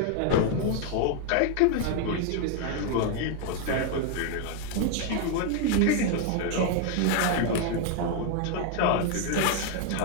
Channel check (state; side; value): different; both; correlation 0.00